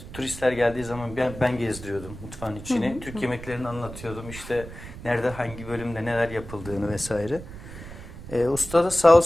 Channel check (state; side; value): noise; right; rumble, 13 dB below the sound